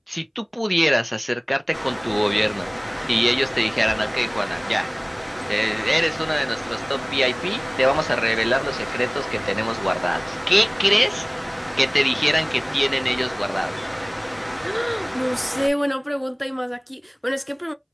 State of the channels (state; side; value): identical; both; correlation 1.00